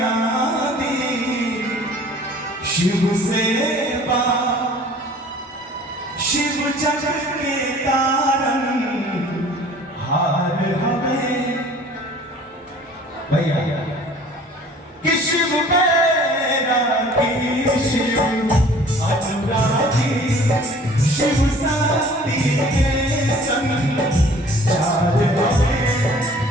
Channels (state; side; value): normal; both; correlation 0.50